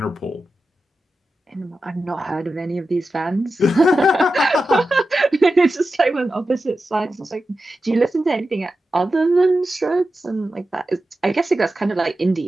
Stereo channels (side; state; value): both; normal; correlation 0.92